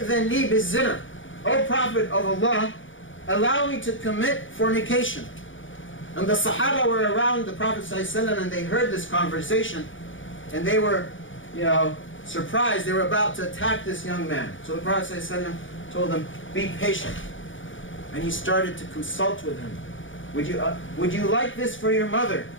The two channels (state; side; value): late; right; 0.56 ms